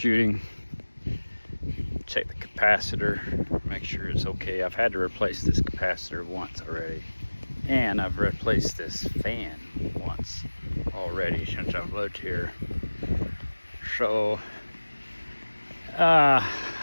Check the capacitor, make sure it's okay. I've had to replace this capacitor once already. And I've replaced this fan once already since I've lived here. So, yep.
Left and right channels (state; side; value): inverted; both; correlation -1.00